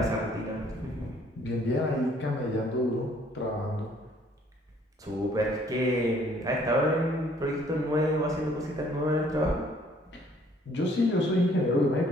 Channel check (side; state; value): both; normal; correlation 0.61